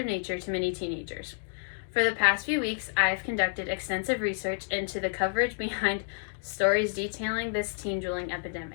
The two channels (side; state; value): right; silent; digital silence